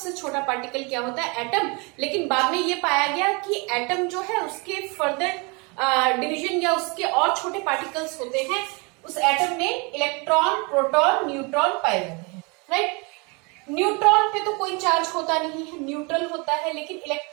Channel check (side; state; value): left; quieter; 30.0 dB